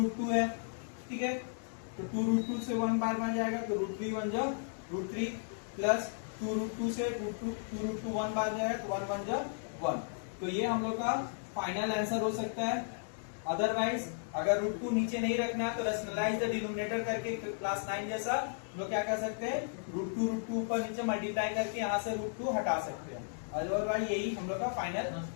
है, ठीक है। तो 2√2 से 1 बार बन जाएगा, तो √3 1 जा √3 प्लस 2√2 से 2√2 1 बार जाएगा, तो 1 1 जा 1। तो ये हम लोग का फाइनल आंसर हो सकता है, अदरवाइज अगर √2 नीचे नहीं रखना है तो रैशनलाइज द डिनोमिनेटर करके क्लास 9 जैसा लोग क्या कर सकते हैं, √2 ऊपर नीचे मल्टीप्लाई करके यहाँ से √2 हटा सकते हैं। अदरवाइज यही हम लोग का फाइनल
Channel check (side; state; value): right; silent; digital silence